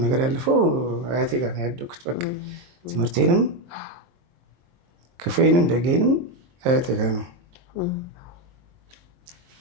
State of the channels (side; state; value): left; late; 23 ms